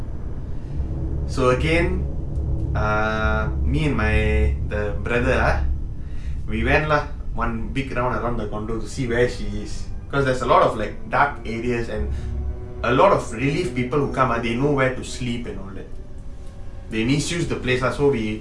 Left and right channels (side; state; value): both; identical; correlation 1.00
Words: So again, me and the brother, we went lah one big round around the condo to see where she is. Because there's a lot of like dark areas and a lot of relief people who come, they know where to sleep and all that. They misuse the place lah. So we